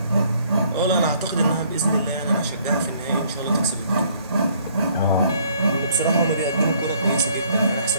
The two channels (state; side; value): inverted; both; correlation -0.62